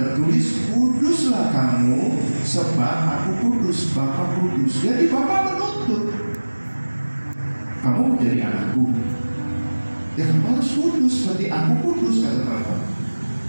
tertulis, kuduslah kamu sebab aku kudus, Bapa kudus. Jadi Bapa menuntut kamu menjadi anakku, ya kamu harus kudus seperti aku kudus, kata Bapa.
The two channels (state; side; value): inverted; both; correlation -1.00